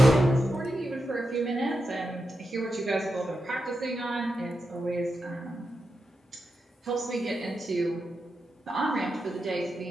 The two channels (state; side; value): normal; both; correlation 0.88